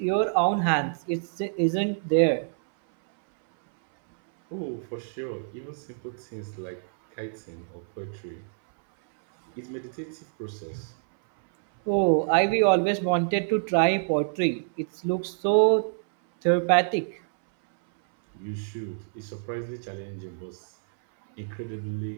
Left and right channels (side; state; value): left; silent; 60 dB below the other